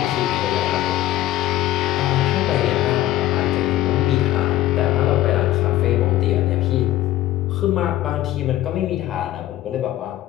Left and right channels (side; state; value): right; quieter; 14.4 dB